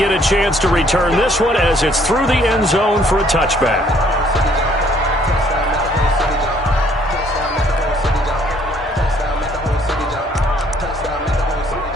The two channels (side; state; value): both; normal; correlation 0.63